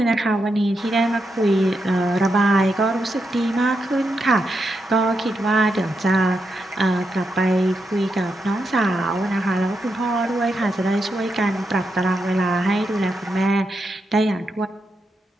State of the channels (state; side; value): normal; both; correlation 0.84